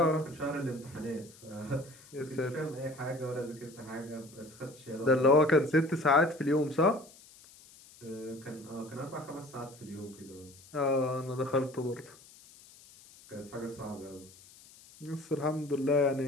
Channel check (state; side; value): noise; left; hiss, 22 dB below the sound